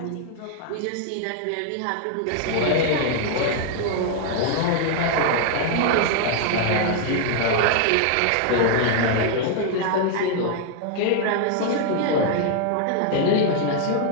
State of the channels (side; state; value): both; different; correlation 0.00